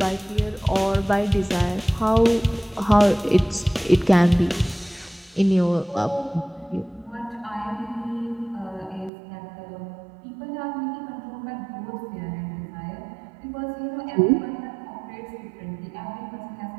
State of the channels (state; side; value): drops out; left; at 9.1 s